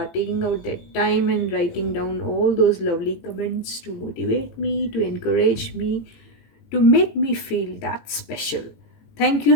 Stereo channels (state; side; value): late; right; 18 ms